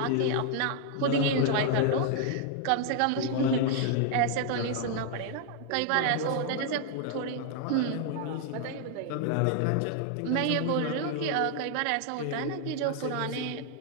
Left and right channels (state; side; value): different; both; correlation 0.00